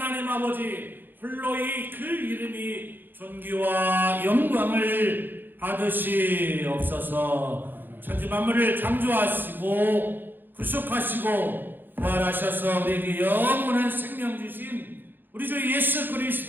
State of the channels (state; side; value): late; left; 0.093 ms